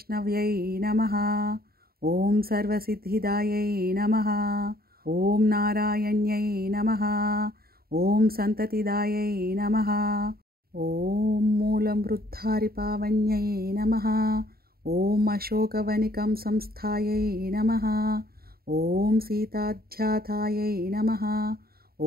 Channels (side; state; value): left; late; 0.44 ms